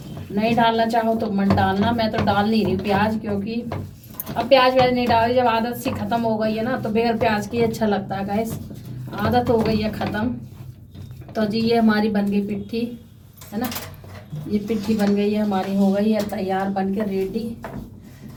नहीं डालना चाहो तो मत डालना। मैं तो डाल नहीं रही प्याज, क्योंकि अब प्याज व्याज नहीं डाली, जब आदत सी ख़त्म हो गई है ना, तो बगैर प्याज की अच्छा लगता है गाइस, आदत हो गई है ख़त्म। तो जी ये हमारी बन गई पिट्ठी, है ना, ये पिट्ठी बन गई है हमारी, हो गई है तैयार बन के रेडी।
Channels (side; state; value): both; identical; correlation 1.00